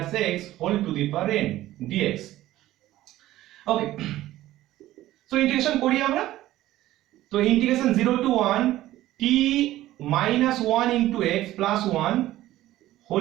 x whole to the power n dx। Okay, so integration করি আমরা। তো integration 0 to 1 t minus 1 into x plus 1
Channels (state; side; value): quieter; left; 15.1 dB